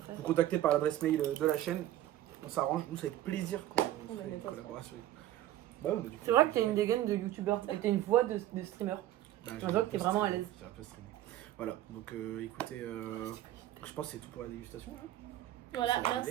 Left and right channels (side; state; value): left; quieter; 13.6 dB